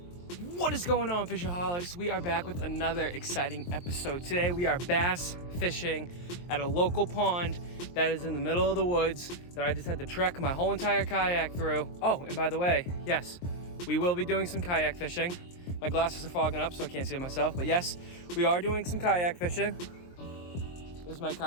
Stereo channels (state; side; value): late; right; 23 ms